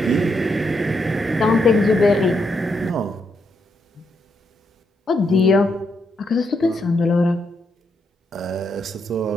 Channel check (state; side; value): normal; both; correlation 0.79